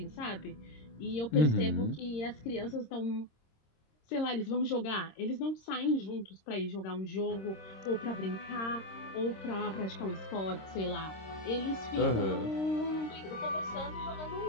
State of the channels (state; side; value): late; right; 26 ms